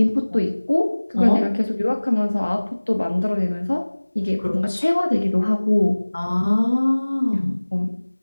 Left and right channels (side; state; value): both; inverted; correlation -1.00